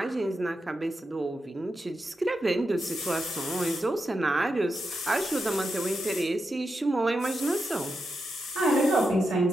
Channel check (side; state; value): both; normal; correlation 0.86